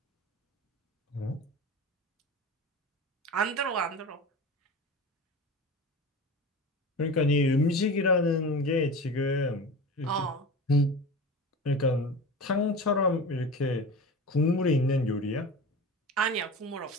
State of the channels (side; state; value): both; normal; correlation 0.31